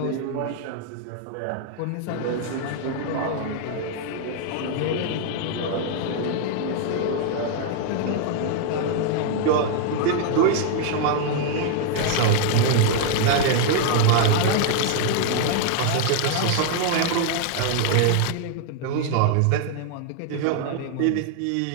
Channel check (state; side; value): different; both; correlation 0.00